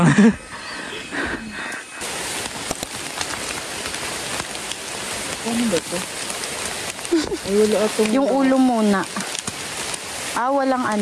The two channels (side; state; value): both; identical; correlation 1.00